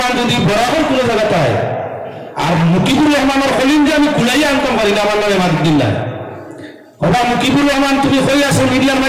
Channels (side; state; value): both; identical; correlation 1.00